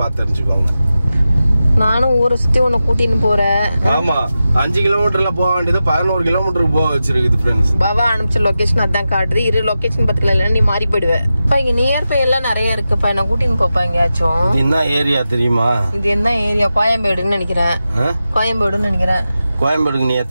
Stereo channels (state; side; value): inverted; both; correlation -0.92